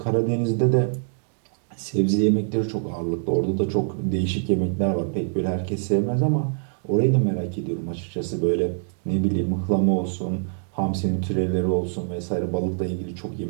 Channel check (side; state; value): left; silent; 62 dB below the other